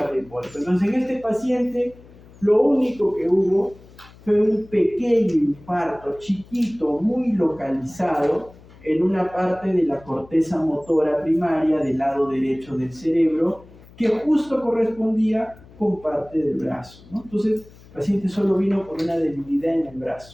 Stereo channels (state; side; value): noise; left; hum, 23 dB below the sound